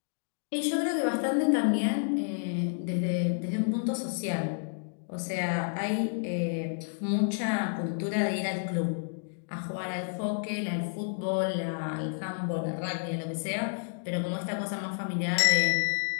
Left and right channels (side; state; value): right; silent; digital silence